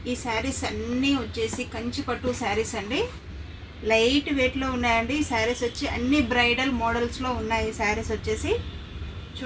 ఈ శారీస్ అన్నీ వచ్చేసి కంచి పట్టు శారీస్ అండి. లైట్ వెయిట్లో ఉన్నాయండి. ఈ శారీస్ వచ్చి అన్ని బ్రైడల్ మోడల్స్లో ఉన్నాయి. ఈ శారీస్ వచ్చేసి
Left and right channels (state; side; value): identical; both; correlation 1.00